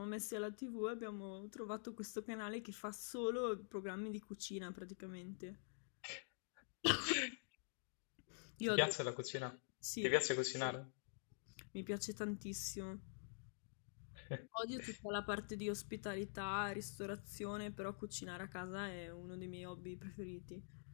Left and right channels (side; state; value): right; silent; digital silence